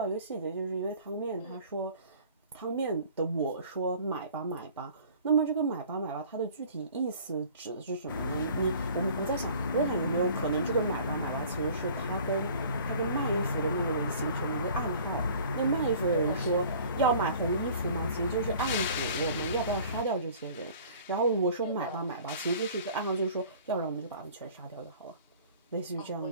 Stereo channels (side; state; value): both; inverted; correlation -0.49